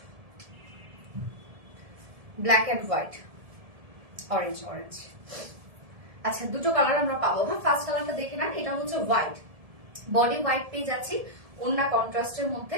Black and white, orange orange. আচ্ছা দুটো কালার আমরা পাবো। হ্যাঁ ফার্স্ট কালারটা দেখে নেন, এটা হচ্ছে হোয়াইট, বডি হোয়াইট পেয়ে যাচ্ছি, ওন্না কন্ট্রাস্টের মধ্যে,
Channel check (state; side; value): late; left; 1.7 ms